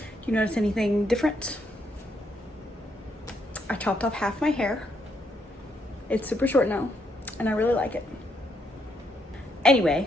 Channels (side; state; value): both; normal; correlation 0.75